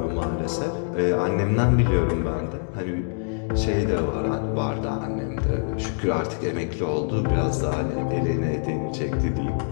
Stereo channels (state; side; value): silent; right; digital silence